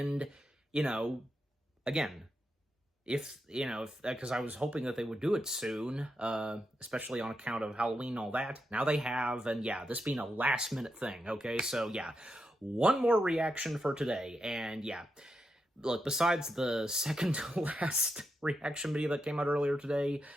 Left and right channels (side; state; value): both; normal; correlation 0.85